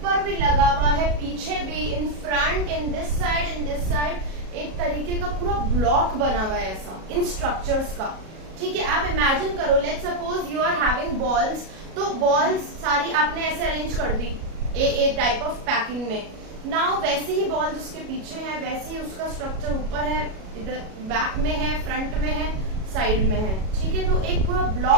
भी लगा हुआ है, पीछे भी, in front, in this side, एक तरीके का पूरा ब्लॉक बना हुआ है ऐसा इन स्ट्रक्चर्स का. ठीक है, आप इमेजिन करो, let suppose you are having balls, तो बॉल्स सारी आपने ऐसे अरेंज कर दी ए टाइप ऑफ पैकिंग में. नाउ वैसे ही बॉल्स उसके पीछे है, वैसे ही उसका स्ट्रक्चर ऊपर है, इधर बैक में है, फ्रंट में है, साइड में है. ठीक है, तो एक पूरा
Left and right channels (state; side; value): late; left; 37 ms